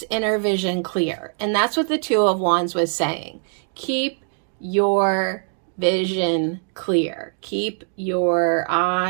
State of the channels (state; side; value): silent; left; 58 dB below the other